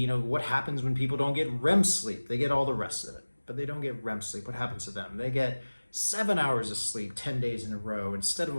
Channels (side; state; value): both; inverted; correlation -1.00